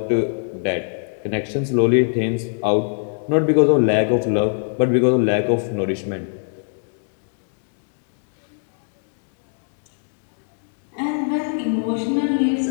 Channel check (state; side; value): silent; right; digital silence